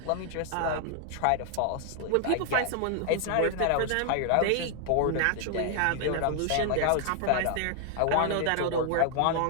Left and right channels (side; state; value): both; different; correlation 0.00